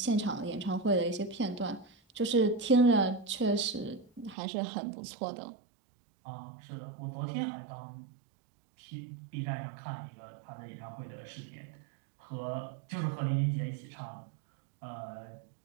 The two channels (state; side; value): drops out; left; at 4.4 s